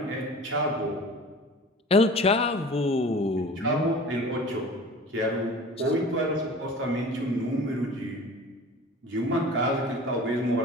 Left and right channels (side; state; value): both; normal; correlation 0.41